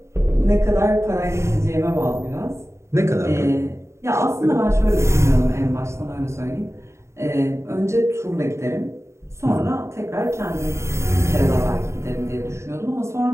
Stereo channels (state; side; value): late; left; 0.13 ms